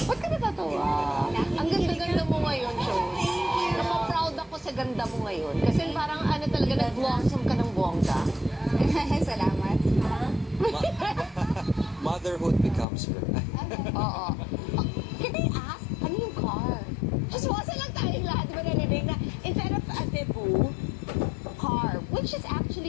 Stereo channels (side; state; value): right; drops out; at 12.9 s